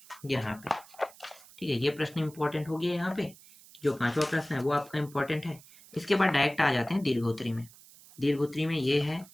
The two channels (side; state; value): right; noise; hiss, 22 dB below the sound